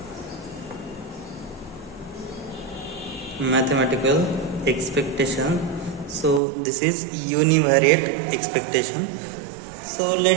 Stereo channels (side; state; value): left; drops out; at 6.4 s